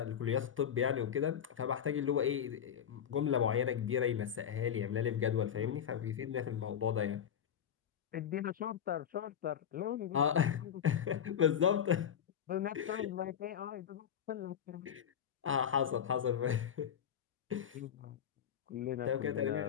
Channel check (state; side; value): quieter; right; 8.8 dB